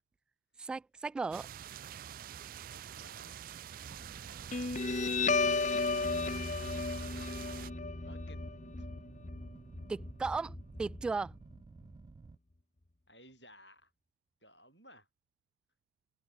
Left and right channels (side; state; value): both; normal; correlation 0.25